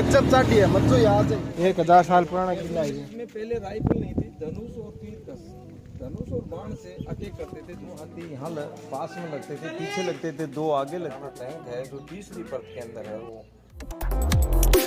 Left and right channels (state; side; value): identical; both; correlation 1.00